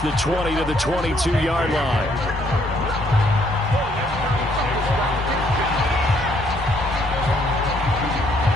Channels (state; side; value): normal; both; correlation 0.68